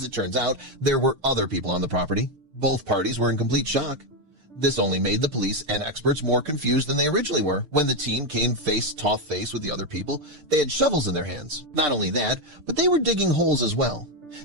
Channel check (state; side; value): late; left; 6.7 ms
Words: it turns out, there were other people on the property. Both parties were in complete shock. This only made the police and experts more confused than they originally were. When the team came face-to-face with the other people, they had shovels in their hands. Not only that, but they were digging holes as well.